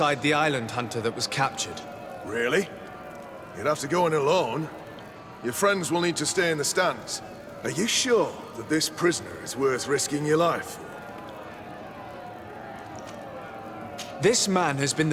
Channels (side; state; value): both; identical; correlation 1.00